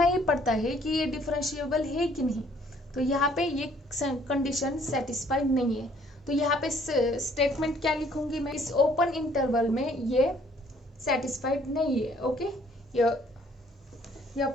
ही पड़ता है कि ये डिफरेंशिएबल है कि नहीं। तो यहाँ पे ये कंडीशन सेटिस्फाइड नहीं है, तो यहाँ पे स्टेटमेंट क्या लिखूंगी मैं, इस ओपन इंटरवल में ये सेटिस्फाइड नहीं है। Okay,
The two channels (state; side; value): normal; both; correlation 0.61